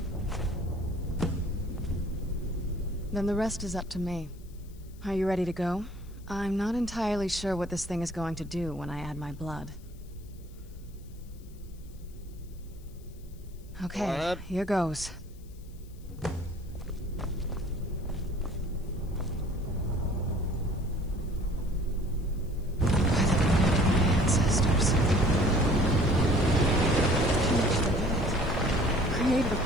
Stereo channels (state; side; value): noise; left; hiss, 28 dB below the sound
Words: Then the rest is up to me. Are you ready to go? I'm not entirely sure what this thing is going to do when I add my blood. Okay, here goes. Ancestors. Created a